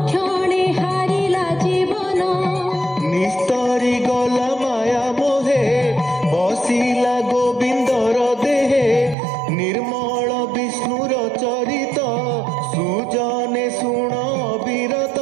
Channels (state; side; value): drops out; left; at 9.2 s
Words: ହାରିଲା ଜୀବନ নিস্তরি গলা মায়া মোহে বসিলা গোবিন্দর দেহে নির্মল বিষ্ণুর চরিত সুজনে শুণ বিরত